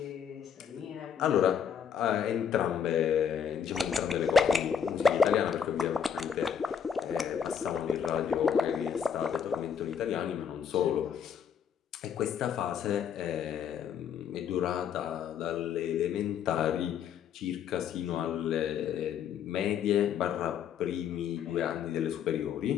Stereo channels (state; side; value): quieter; right; 7.7 dB